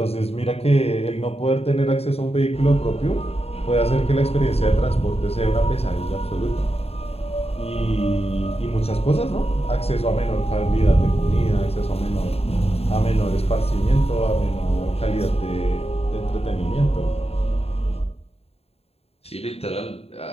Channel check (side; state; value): right; late; 0.29 ms